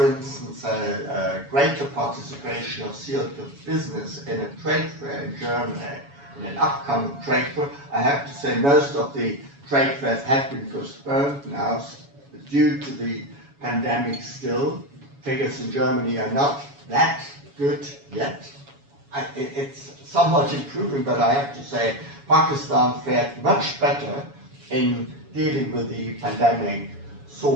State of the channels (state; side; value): late; left; 7.1 ms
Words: instance, a greater participation of Sialkot business in a trade fair in Germany, in an upcoming trade fair, I have to say most of the trade fairs have been postponed now due to the pandemic still. Figures in Germany are not that good yet. It's somewhat improving, but I have to say Pakistan fared much better in dealing with the pandemic